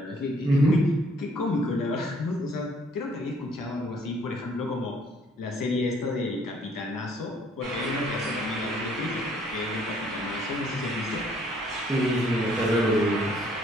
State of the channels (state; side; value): normal; both; correlation 0.63